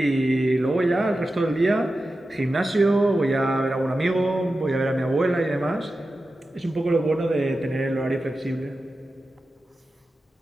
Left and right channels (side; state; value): both; normal; correlation 0.92